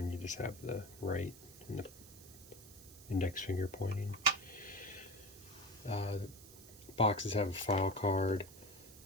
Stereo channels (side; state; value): right; noise; hiss, 18 dB below the sound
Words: you just have the right and the index finger pointing. The boxes have a file card,